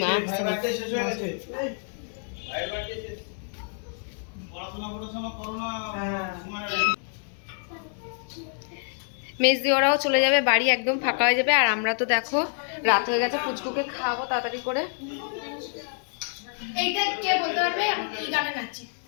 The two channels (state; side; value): silent; right; 60 dB below the other